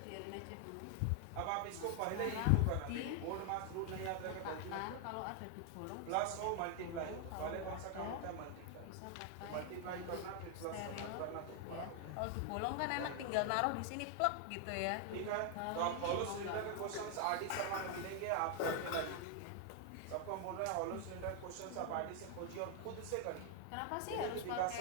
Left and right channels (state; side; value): different; both; correlation 0.00